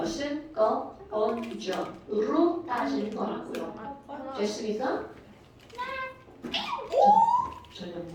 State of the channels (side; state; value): both; identical; correlation 1.00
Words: 건조로 따지는 거라고요. 됐습니까? 전혀